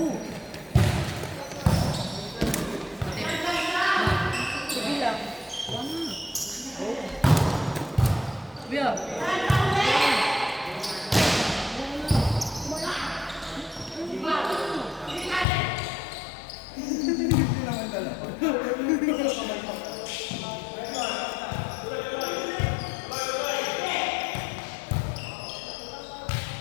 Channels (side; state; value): right; drops out; at 15.5 s